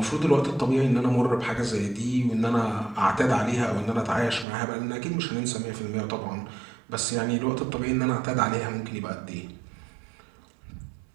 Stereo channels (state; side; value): drops out; left; at 4.5 s